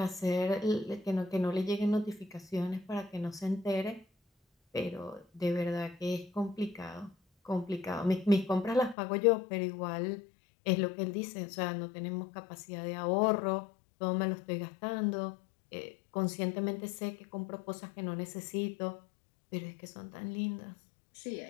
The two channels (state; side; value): drops out; right; at 9.0 s